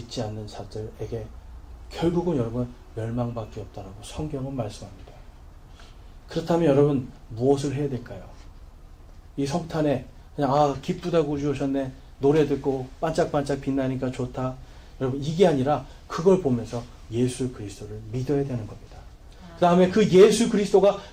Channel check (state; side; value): identical; both; correlation 1.00